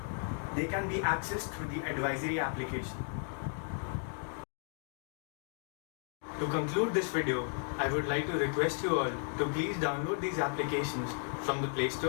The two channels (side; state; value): right; silent; 55 dB below the other